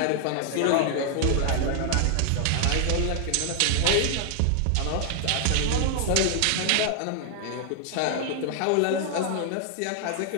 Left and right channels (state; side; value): different; both; correlation 0.00